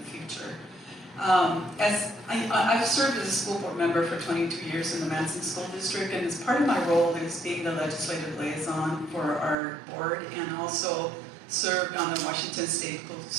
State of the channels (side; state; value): left; drops out; at 9.6 s